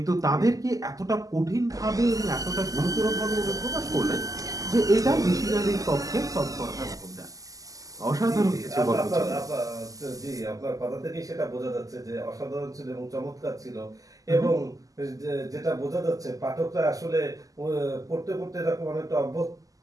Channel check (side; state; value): left; late; 0.17 ms